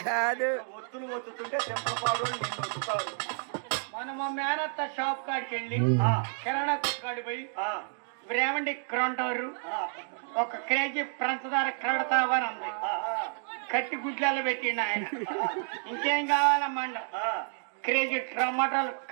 కాదు ఒత్తులు ఒత్తుతుంటే చింతలపాడు నిన్ను ఒత్తుతాడు. మన మా మేనత్త షాప్ కాడికి వెళ్ళి ఆ. కిరాణా కొట్టుకాడి పోయి ఆ. బ్రేమండి క్రంటారు ఆ. 1 కేజీ పంచదార క్రడతావని అంది. ఆ. కట్టి గుడ్లలో పెట్టిండు ఆయన. ఇంకేం కావాలమ్మా? ఆ. కేజీ టమాటాలు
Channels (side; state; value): left; silent; 55 dB below the other